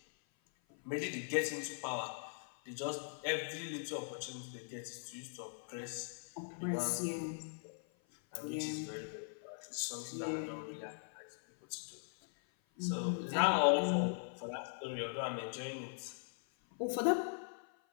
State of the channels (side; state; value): right; silent; 51 dB below the other